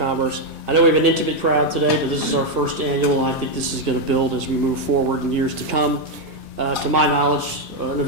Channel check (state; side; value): normal; both; correlation 0.03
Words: I know we have an intimate crowd today, but this is our first annual, and I think this is going to build as we move forward in years to come. To my knowledge, an